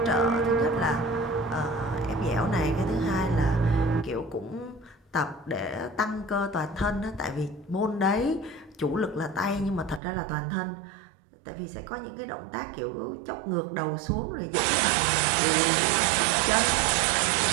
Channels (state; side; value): drops out; left; at 10.0 s